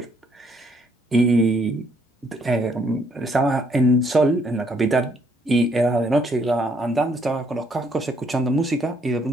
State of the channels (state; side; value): normal; both; correlation 0.69